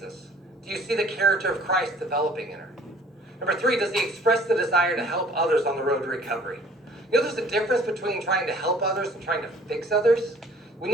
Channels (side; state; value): both; normal; correlation 0.54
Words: Do you see the character of Christ developing in her? Number 3, does he express the desire to help others on the road to recovery? You know, there's a difference between trying to help others and trying to fix others. We